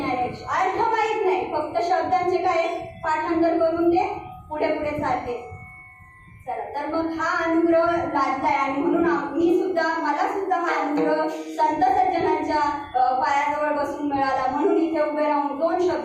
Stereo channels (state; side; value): identical; both; correlation 1.00